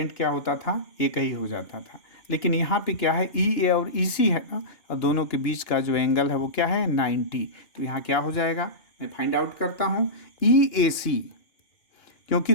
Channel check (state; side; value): late; right; 3.0 ms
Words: क्या होता था, एक ही हो जाता था। लेकिन यहाँ पे क्या है, ई ए और ई सी है ना, और दोनों के बीच का जो एंगल है वो क्या है 90। तो यहाँ क्या हो जाएगा, मैं फाइंड आउट करता हूँ, ई ए सी, क्योंकि